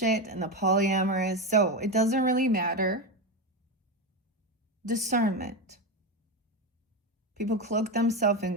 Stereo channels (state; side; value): normal; both; correlation 0.14